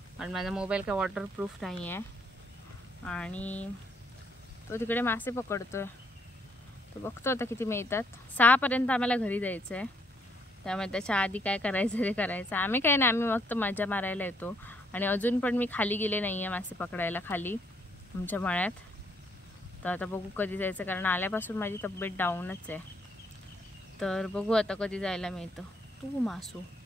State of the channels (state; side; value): normal; both; correlation 0.70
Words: आणि माझा मोबाईल काय वॉटरप्रूफ नाही आहे. आणि तो तिकडे मासे पकडतोय. तो बघतो आता किती मिळतात. 6 पर्यंत आम्हाला घरी जायचं आहे, त्यामुळे त्याच्या आधी काय करायचं ते करायचं. आम्ही काय नाही, आम्ही फक्त मजा मारायला येतो. आणि अजून पण मी खाली गेले नाही आहे मासे पकडायला खाली आमच्या मळ्यात. तर आता बघू कधी जायचं, कारण आल्यापासून माझी तब्येत डाऊनच आहे. तर बघू आता कधी जायला मिळतं. तू मासू